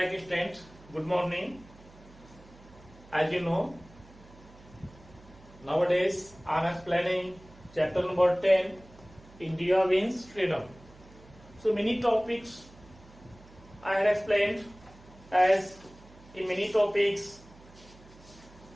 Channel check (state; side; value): noise; right; hum, 23 dB below the sound